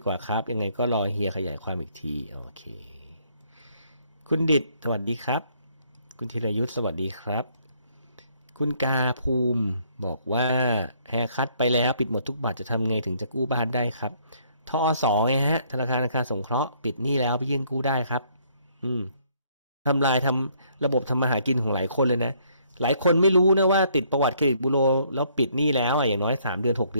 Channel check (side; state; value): both; inverted; correlation -0.66